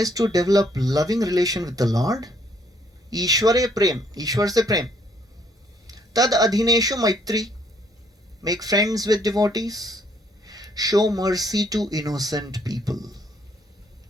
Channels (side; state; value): both; normal; correlation 0.67